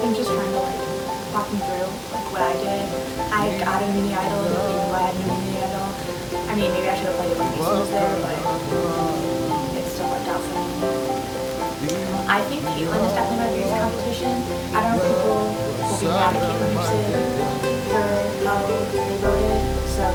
think just trying to like walk me through like what I did. I got a mini idol, and nobody knew I had a mini idol. I mean, maybe I should have played it when Mason was there, but it still worked out for me. I think Caitlin is definitely my biggest competition. I don't know if people will be mad at Caitlin or Sid for how they voted, so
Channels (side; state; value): both; identical; correlation 1.00